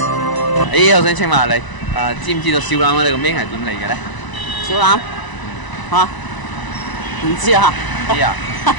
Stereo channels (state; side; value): late; right; 1.0 ms